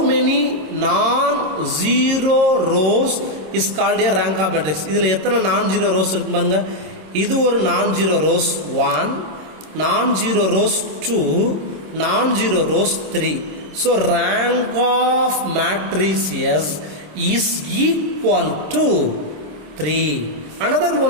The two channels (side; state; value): left; late; 26 ms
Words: many non-zero rows is called a rank of matrix. இதுல எத்தனை non-zero rows இருக்கு பாருங்க. இது ஒரு non-zero rows 1, non-zero rows 2, non-zero rows 3. So rank of matrices is equal to 3. Another